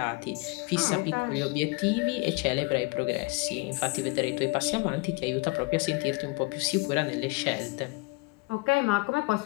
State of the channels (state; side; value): quieter; right; 26.8 dB